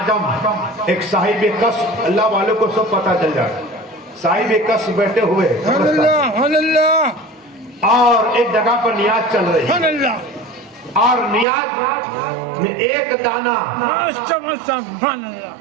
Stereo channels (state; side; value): drops out; left; at 11.5 s